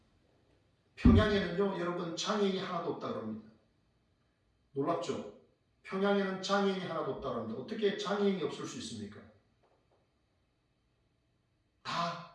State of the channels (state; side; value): identical; both; correlation 1.00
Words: 평양에는요 여러분 장애인이 하나도 없다 그럽니다. 놀랍죠? 평양에는 장애인이 하나도 없다 그럽니다. 어떻게 장애인이 없을 수 있습니까?